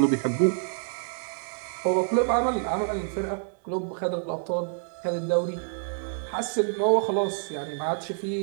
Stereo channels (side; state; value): left; silent; digital silence